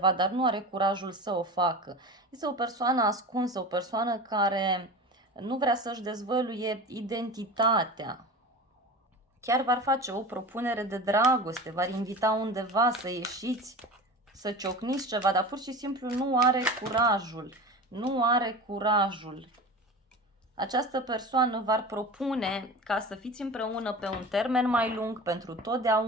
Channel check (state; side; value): normal; both; correlation 0.32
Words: dar nu are curajul să o facă. Este o persoană ascunsă, o persoană care nu vrea să-și dezvăluie identitatea. Chiar v-ar face o propunere de dragoste, v-ar invita undeva să ieșiți, să ciocniți ceva, dar pur și simplu nu are curajul. Nu are curajul. Această persoană v-ar propune ca să fiți împreună pe un termen mai lung, pentru